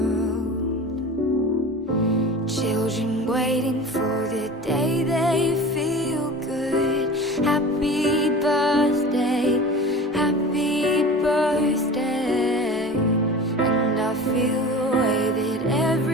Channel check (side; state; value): both; normal; correlation 0.36